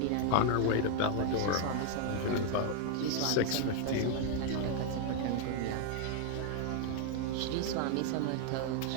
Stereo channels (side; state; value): both; different; correlation 0.00